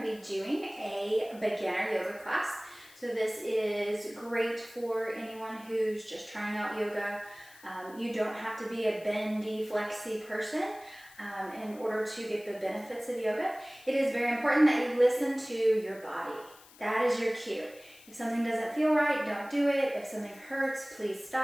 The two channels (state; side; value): noise; left; hiss, 23 dB below the sound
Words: be doing a beginner yoga class. So this is great for anyone who's just trying out yoga. You don't have to be a bendy, flexy person in order to get the benefits of yoga. It is very important that you listen to your body. That is your cue. If something doesn't feel right, don't do it. If something hurts, please